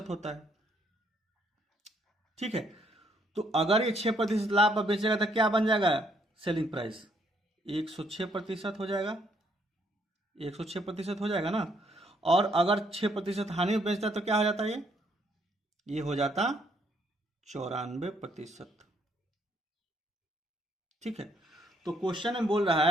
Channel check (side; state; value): both; normal; correlation 0.69